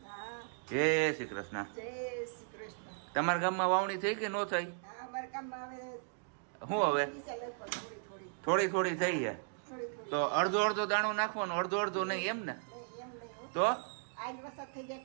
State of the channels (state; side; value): silent; left; digital silence